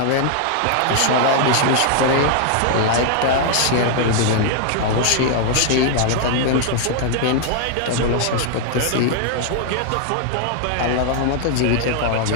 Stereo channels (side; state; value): both; different; correlation 0.00